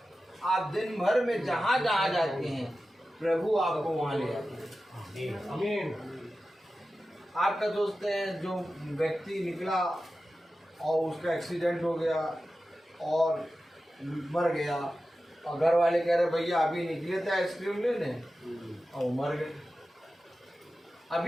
आप दिन भर में जहाँ जहाँ जाते हैं प्रभु आपको वहाँ ले जाते हैं। आमीन। आपका दोस्त है जो व्यक्ति निकला और उसका एक्सीडेंट हो गया और मर गया, और घर वाले कह रहे भैया अभी निकले थे आइसक्रीम लेने, और मर गए।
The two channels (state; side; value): normal; both; correlation 0.94